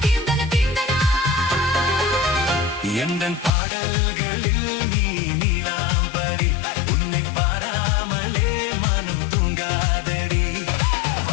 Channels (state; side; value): drops out; right; at 3.5 s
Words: எந்தன் பாடல்களில் நீ நீலாம்பரி உன்னை பாராமலே மனம் தூங்காதடி